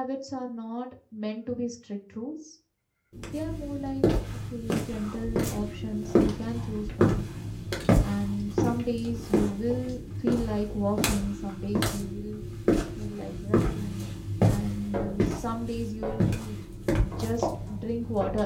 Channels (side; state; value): both; identical; correlation 1.00